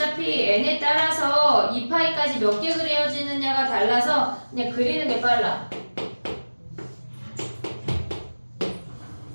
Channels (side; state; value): both; inverted; correlation -1.00